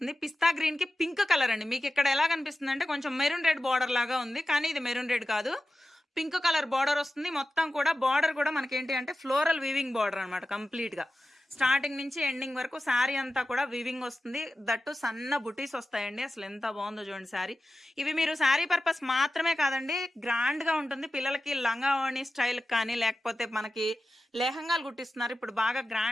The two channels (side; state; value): both; normal; correlation 0.94